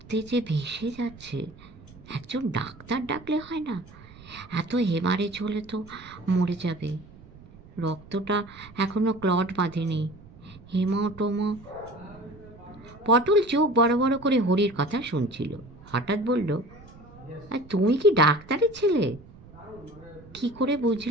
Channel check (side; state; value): right; noise; rumble, 21 dB below the sound